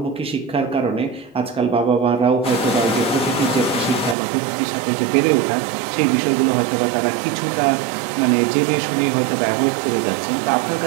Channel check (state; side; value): drops out; left; at 4.2 s